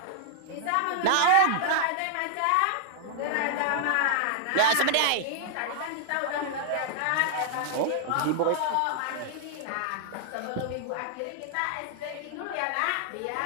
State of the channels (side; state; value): both; different; correlation -0.01